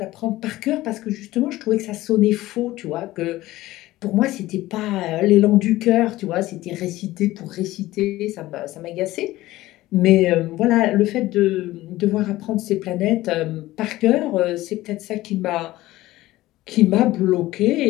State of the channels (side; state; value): right; quieter; 17.0 dB